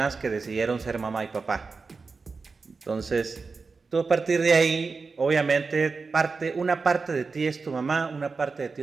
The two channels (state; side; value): quieter; left; 4.5 dB